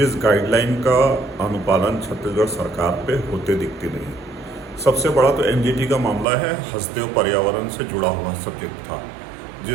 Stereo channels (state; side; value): drops out; left; at 6.2 s